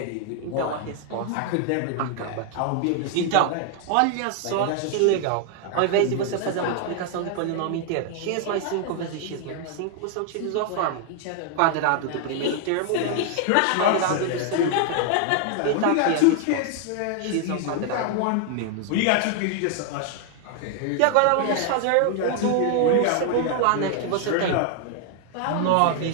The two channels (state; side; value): different; both; correlation 0.00